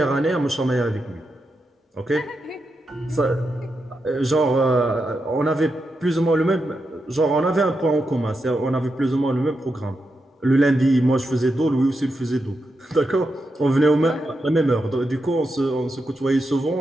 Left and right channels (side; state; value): both; normal; correlation 0.86